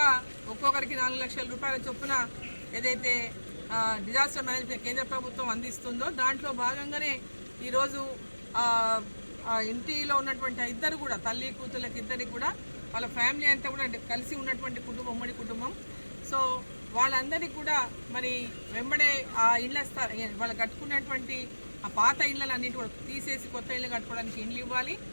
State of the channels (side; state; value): both; inverted; correlation -1.00